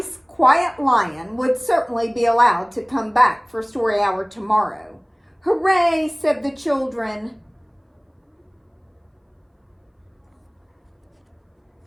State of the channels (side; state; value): both; identical; correlation 1.00